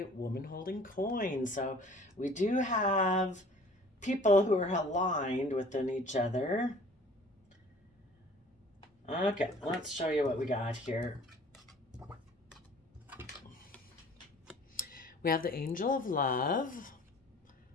woman holding coin. So, we do have people who are aligned within each other. Okay, let's show you what we got here. We have the Angel of Love,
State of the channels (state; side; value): normal; both; correlation 0.50